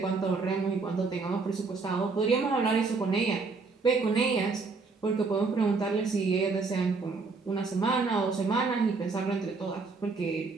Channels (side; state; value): left; quieter; 4.3 dB